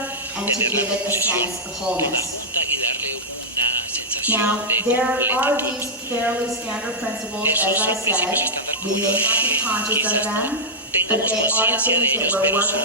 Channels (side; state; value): both; normal; correlation -0.08